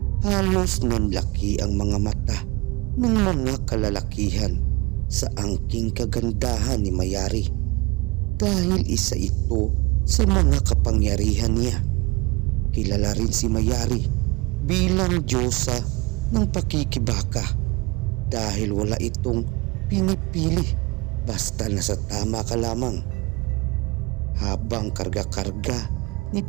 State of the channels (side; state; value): left; quieter; 24.4 dB